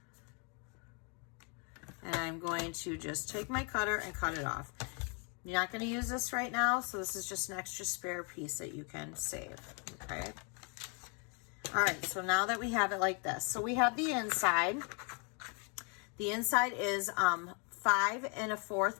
And I'm going to just take my cutter and cut it off. You're not going to use this right now, so this is just an extra spare piece that you can save. Okay. All right, so now that we have it like this, so we have the inside. The inside is 5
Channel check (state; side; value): quieter; right; 36.2 dB